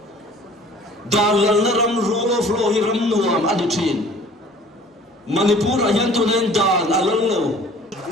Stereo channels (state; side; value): normal; both; correlation 0.50